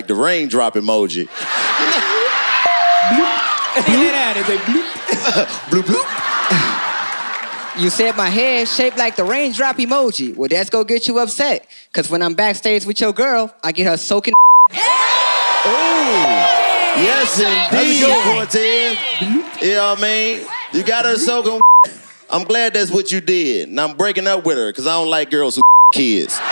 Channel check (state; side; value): inverted; both; correlation -1.00